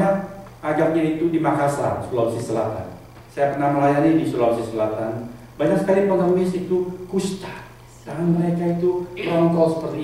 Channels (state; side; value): identical; both; correlation 1.00